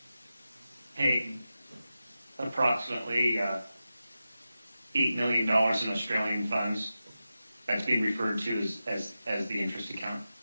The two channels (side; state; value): both; inverted; correlation -0.92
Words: paid approximately $8 million in Australian funds? That's being referred to as the interest account.